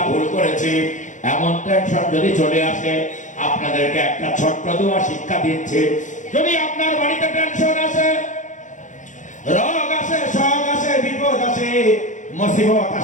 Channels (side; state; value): right; late; 0.36 ms